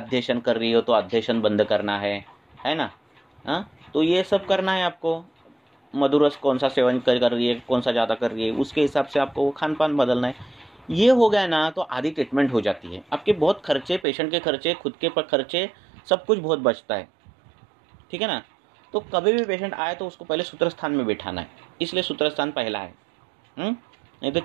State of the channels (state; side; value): drops out; left; at 14.1 s